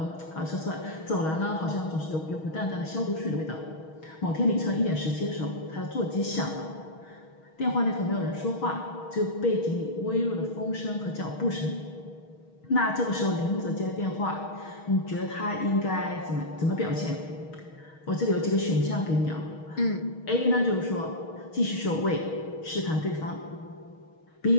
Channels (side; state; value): right; late; 6.3 ms